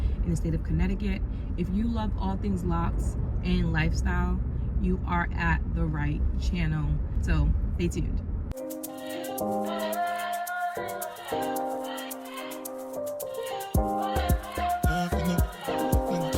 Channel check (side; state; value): both; identical; correlation 1.00